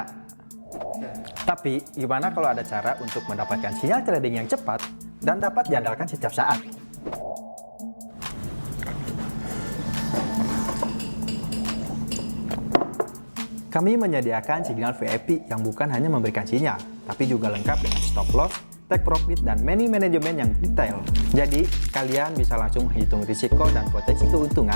Tapi, gimana kalau ada cara untuk mendapatkan sinyal trading yang cepat dan dapat diandalkan setiap saat? Kami menyediakan signal VIP yang bukan hanya memberikan sinyal, tapi juga lengkap dengan stop loss, take profit, dan manajemen yang detail. Jadi, kalian bisa langsung menghitung risiko dan potensi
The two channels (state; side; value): inverted; both; correlation -1.00